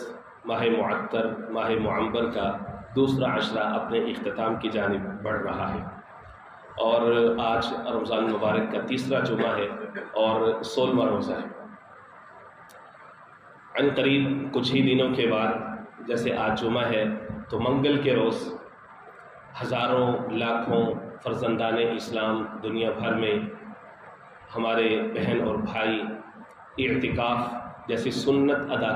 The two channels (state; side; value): identical; both; correlation 1.00